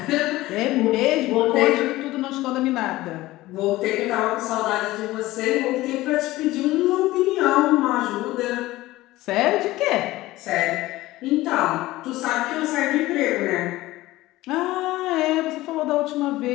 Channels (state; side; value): quieter; right; 17.7 dB